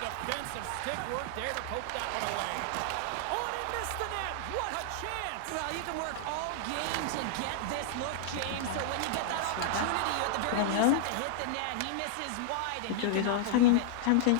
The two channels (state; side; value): different; both; correlation -0.01